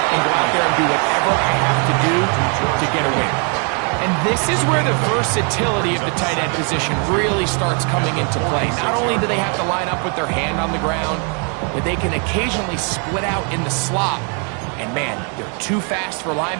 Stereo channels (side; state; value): left; quieter; 38.7 dB